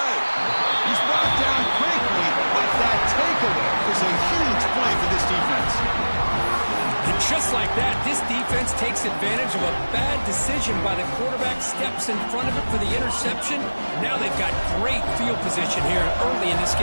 He's brought down quickly, but that takeaway is a huge play for this defense. And just like that, this defense takes advantage of a bad decision by the quarterback, steps in front of it for the interception. Now they've got great field position here early in this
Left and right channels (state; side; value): inverted; both; correlation -1.00